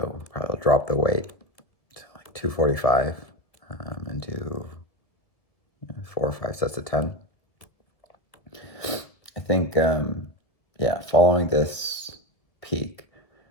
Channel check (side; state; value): right; late; 1.9 ms